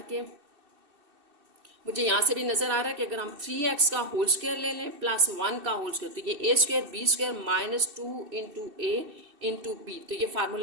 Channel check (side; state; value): left; late; 2.6 ms